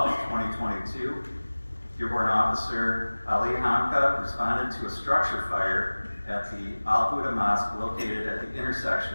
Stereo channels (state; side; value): inverted; both; correlation -1.00